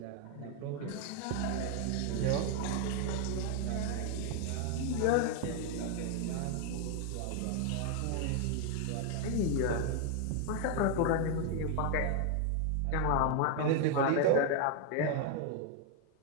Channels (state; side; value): different; both; correlation 0.00